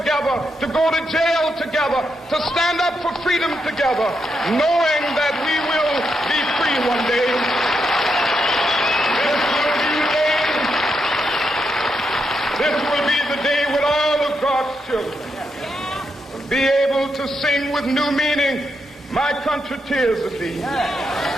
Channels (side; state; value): both; normal; correlation 0.82